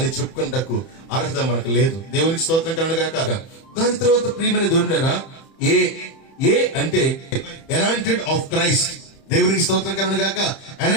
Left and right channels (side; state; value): right; late; 31 ms